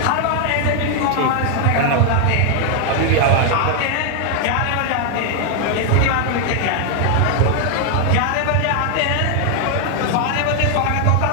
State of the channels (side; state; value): both; different; correlation 0.00